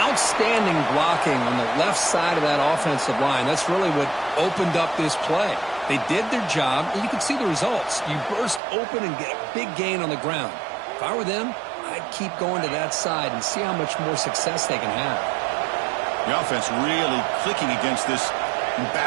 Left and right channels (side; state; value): left; drops out; at 8.6 s